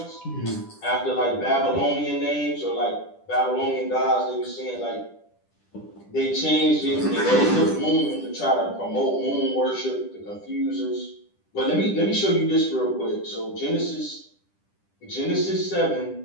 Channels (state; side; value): late; right; 10 ms